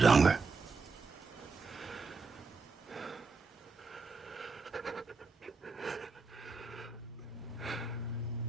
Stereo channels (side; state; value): left; quieter; 4.3 dB